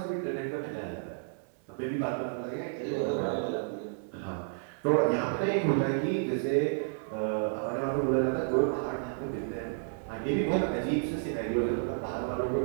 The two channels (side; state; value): left; silent; 57 dB below the other